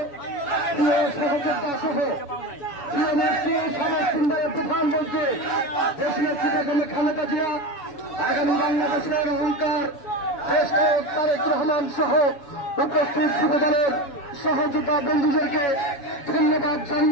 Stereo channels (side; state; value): right; late; 7.0 ms